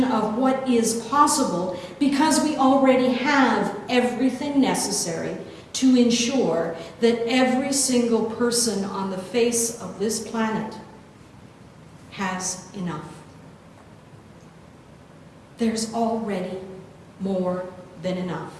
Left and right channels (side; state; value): both; identical; correlation 1.00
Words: of what is possible because we already have everything necessary to ensure that every single person on the face of this planet has enough. There's already more than enough.